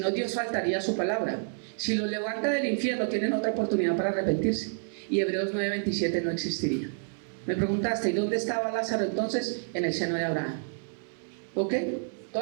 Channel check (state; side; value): silent; left; 59 dB below the other